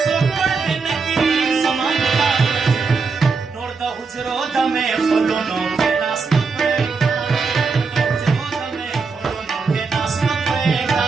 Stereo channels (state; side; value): quieter; left; 4.7 dB